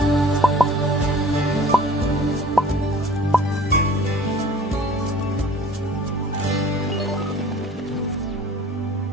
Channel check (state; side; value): normal; both; correlation 0.49